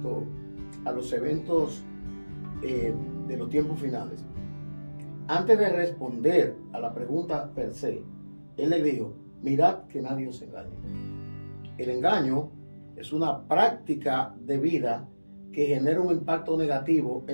a los eventos de los tiempos finales, antes de responder a la pregunta per se, él le dijo, mirad que nadie os engañe. El engaño es una práctica de vida que genera un impacto negativo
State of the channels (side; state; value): both; inverted; correlation -1.00